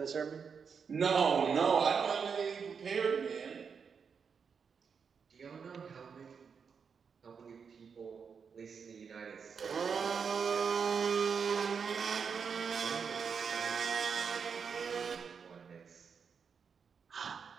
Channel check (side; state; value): left; quieter; 6.2 dB